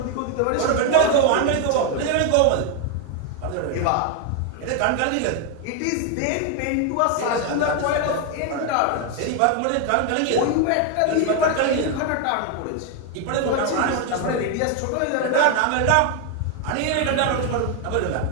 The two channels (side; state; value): both; different; correlation 0.01